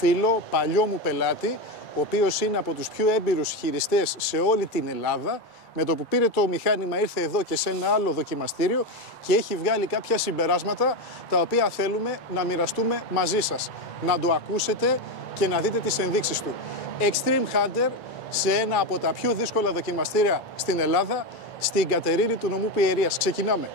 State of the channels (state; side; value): late; right; 2.3 ms